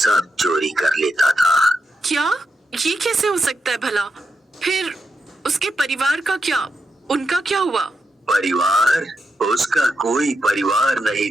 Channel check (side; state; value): both; normal; correlation 0.86